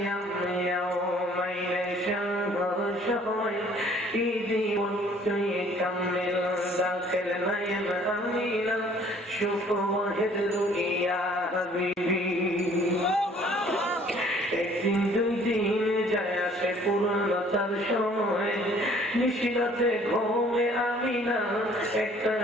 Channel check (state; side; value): normal; both; correlation 0.56